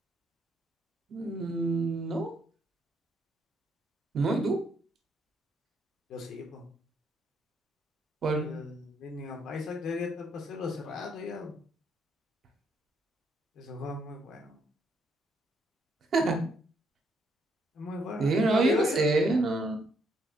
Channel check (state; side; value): normal; both; correlation 0.73